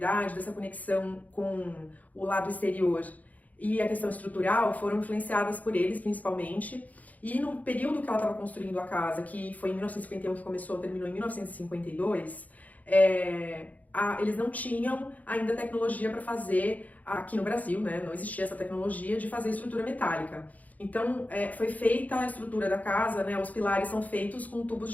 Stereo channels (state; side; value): late; right; 0.076 ms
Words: dessa conexão com o lado exterior e a questão estrutural foram influenciadas por eles, principalmente. E no período que ela estava construindo a casa, que foi em 1951 que começou, terminou em 1952, eles não tinham ainda tecnologia para fazer, aqui no Brasil, né? Não existia essa tecnologia de fazer estrutura metálica. Então, foi feita a estrutura da casa, né? Os pilares são feitos com tubos